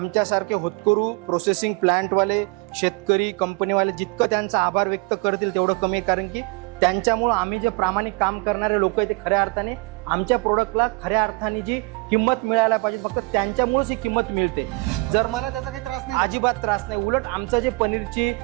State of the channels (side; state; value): left; quieter; 27.6 dB